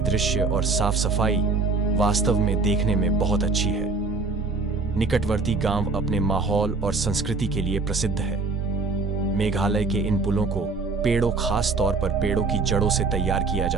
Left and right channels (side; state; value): left; quieter; 4.1 dB